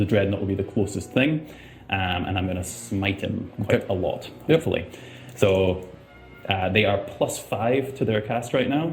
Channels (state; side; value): identical; both; correlation 1.00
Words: Dreadnought will be the closest thing. And I'm going to smite him quite a lot, hopefully. So they are +5 to their cast right now